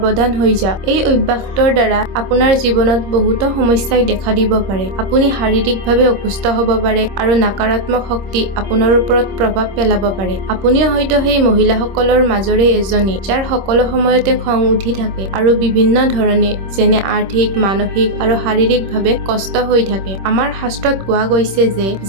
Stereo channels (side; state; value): left; late; 26 ms